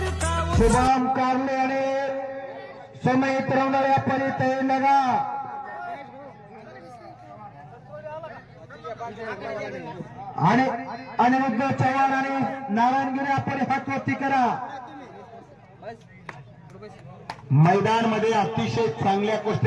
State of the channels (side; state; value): both; identical; correlation 1.00